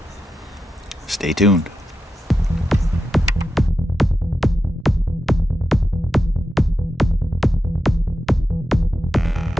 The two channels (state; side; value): normal; both; correlation 0.89